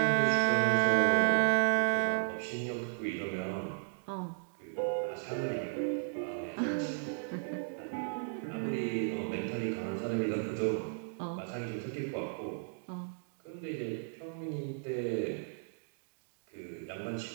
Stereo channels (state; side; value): silent; left; digital silence